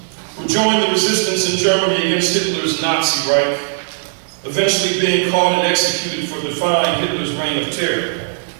who joined the resistance in Germany against Hitler's Nazi Reich, eventually being caught and executed for defying Hitler's reign of terror.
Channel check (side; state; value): left; silent; digital silence